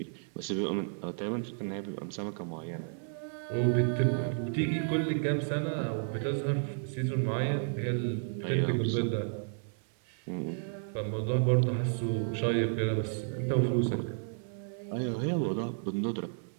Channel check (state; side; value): silent; left; 56 dB below the other